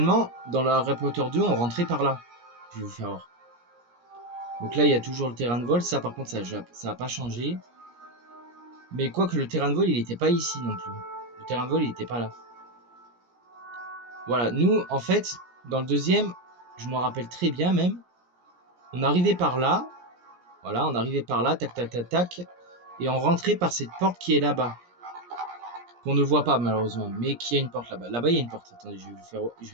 dans le Harry Potter 2, on rentrait par là. Je vais vous faire voir. Donc là, il y a toujours le terrain de vol. Ça, par contre, ça n'a pas changé. Mais quoique le terrain de vol, il n'était pas ici non plus. Le terrain de vol, il n'était pas là. Voilà, nous, en fait, dans le deuxième, je me rappelle très bien même, on arrivait par là. Voilà, on arrivait par là, tac, tac, tac, tac. Et on rentrait par cette porte qui est là-bas. Qu'on ne voit pas malheureusement, mais qui a une porte là-bas. Là-bas, il y a une porte. Attendez, je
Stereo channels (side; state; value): left; late; 17 ms